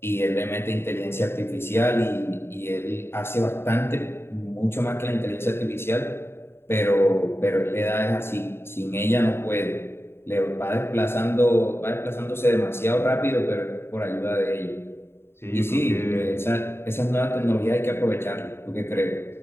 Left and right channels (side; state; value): right; late; 0.11 ms